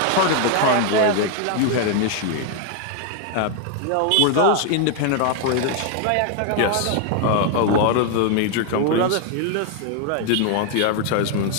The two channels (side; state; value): both; different; correlation 0.00